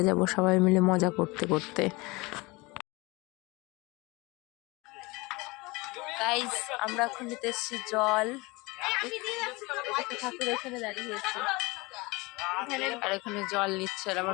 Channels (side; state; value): right; quieter; 24.0 dB